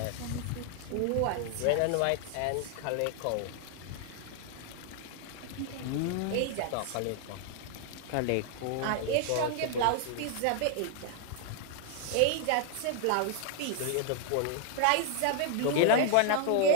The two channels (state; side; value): different; both; correlation 0.00